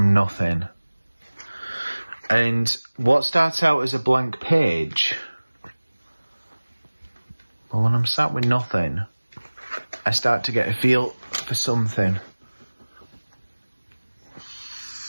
nothing. And what starts out as a blank page, well, when I'm sat with nothing, I start to get a feel for something.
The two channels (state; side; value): inverted; both; correlation -1.00